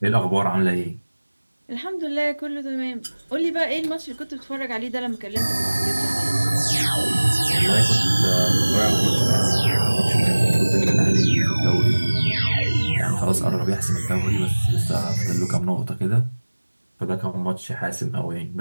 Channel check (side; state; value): both; inverted; correlation -1.00